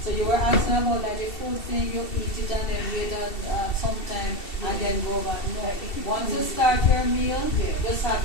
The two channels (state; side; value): late; right; 2.7 ms